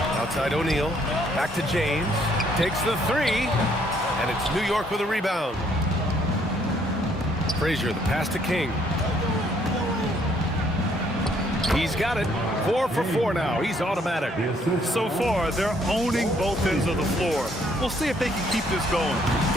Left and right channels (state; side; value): normal; both; correlation 0.66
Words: Outside O'Neal. Back to James. Takes the three. And it's New York with a rebound. Frazier, the pass to King. He's got it. 4 for 4 now. He's automatic. So far, they're owning both ends of the floor. We'll see if they can keep this going.